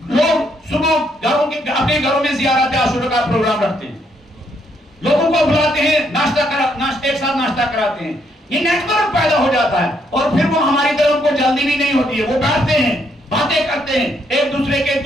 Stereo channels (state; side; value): normal; both; correlation 0.73